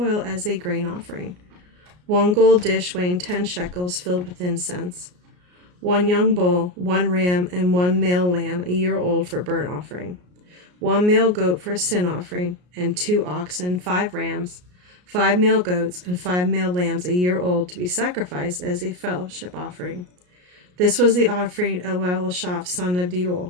as a grain offering. 1 gold dish weighing 10 shekels filled with incense, 1 young bull, 1 ram, and 1 male lamb a year old for burnt offering, 1 male goat for a sin offering, and 2 oxen, 5 rams, 5 male goats, and 5 male lambs a year old to be sacrificed as a fellowship offering. This was the offering of Elishaph, son of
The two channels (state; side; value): late; left; 33 ms